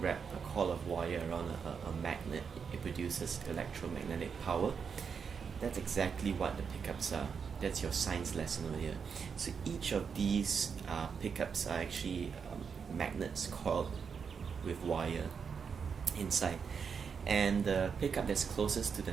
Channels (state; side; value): quieter; left; 6.3 dB